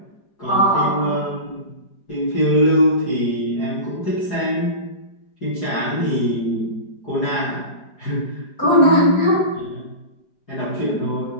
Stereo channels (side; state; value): right; late; 4.9 ms